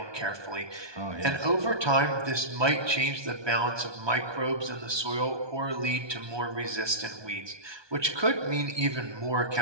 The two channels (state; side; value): late; left; 1.2 ms